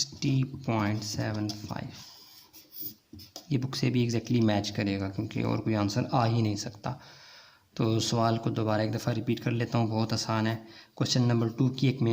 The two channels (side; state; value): both; identical; correlation 1.00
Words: ये बुक से भी एग्जैक्टली मैच करेगा क्योंकि और कोई आंसर आ ही नहीं सकता। तो सवाल को दोबारा एक दफ़ा रिपीट कर लेता हूँ, बहुत आसान है। क्वेश्चन नंबर 2 की एक